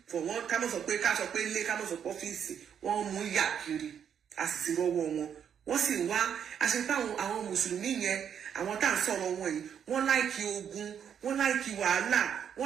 for one ká mọ̀ sọ pé ilé ká mọ̀ sọ pé ọ́fíìsì wọ́n mú yà kiri a sì ti rọ́wọ́ wọ́n sì wá àṣepá àwọn mùsùlùmí yẹn àwọn tá à ń sọ̀rọ̀ wọn yìí wọ́n láìkí ogun wọ́n láìkí wàhálà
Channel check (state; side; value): quieter; left; 8.3 dB